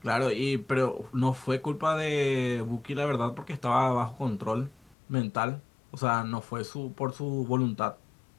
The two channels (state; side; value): drops out; right; at 5.0 s